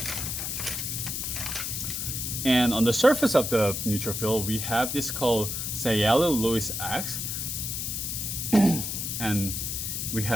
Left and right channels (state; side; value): noise; left; hiss, 3 dB below the sound